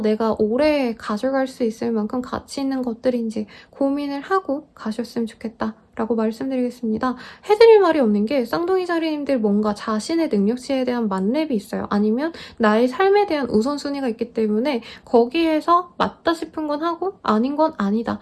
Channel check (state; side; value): identical; both; correlation 1.00